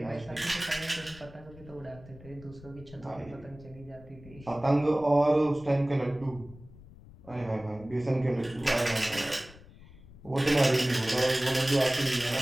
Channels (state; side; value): noise; left; rumble, 20 dB below the sound